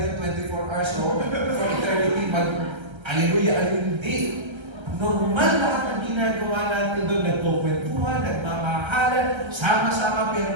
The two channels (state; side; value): late; left; 1.3 ms